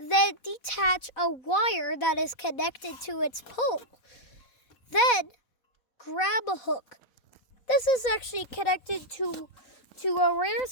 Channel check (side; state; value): right; late; 4.1 ms